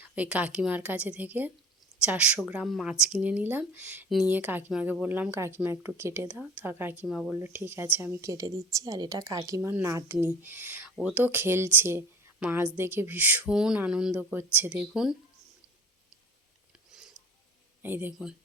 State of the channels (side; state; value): both; normal; correlation 0.42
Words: ওই কাকিমার কাছে থেকে 400 গ্রাম মাছ কিনে নিলাম। নিয়ে কাকিমাকে বললাম, কাকিমা একটু কেটে দাও। তা কাকিমা বললো ঠিক আছে, আমি কেটে দিচ্ছি। আর এটা কাকিমার নাতনি, ও তো খেলছে, মাছ দেখে ভীষণ আনন্দ করছে। দেখুন, এই দেখুন,